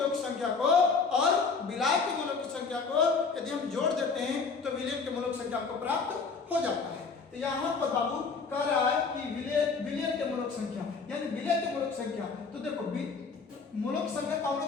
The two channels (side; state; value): right; quieter; 4.9 dB